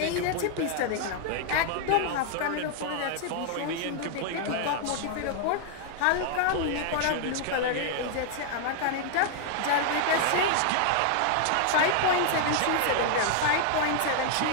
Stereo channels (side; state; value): both; different; correlation 0.00